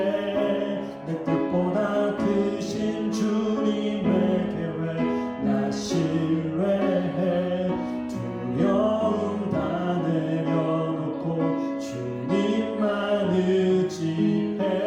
내 뜻보다 크신 주님의 계획 나 신뢰해. 두려움 다 내려놓고 주님만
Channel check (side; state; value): both; identical; correlation 1.00